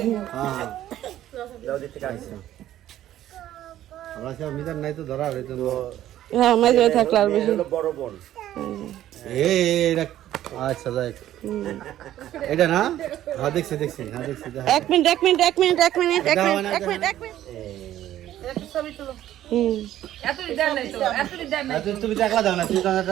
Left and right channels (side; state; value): left; quieter; 12.7 dB